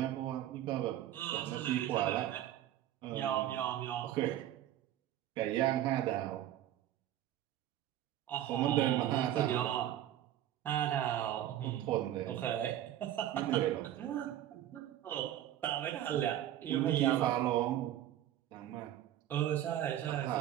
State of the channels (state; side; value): quieter; left; 12.3 dB